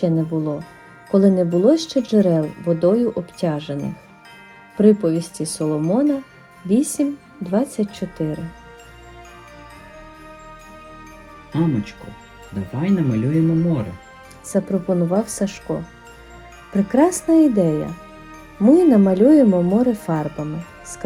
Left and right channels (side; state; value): both; identical; correlation 1.00